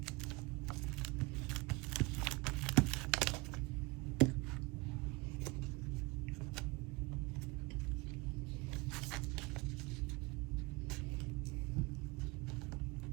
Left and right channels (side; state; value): left; quieter; 25.0 dB